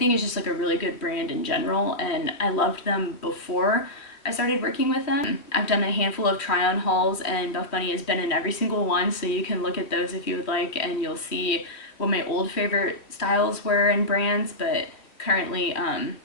it's just like a really good brand in general, and I loved them before I started working with them. I've done a handful of try-on hauls, and Buff Bunny has been in every single one, so you can look at those if you would like, and you'll see what my old favorite styles were and brands. But currently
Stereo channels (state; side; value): late; right; 3.2 ms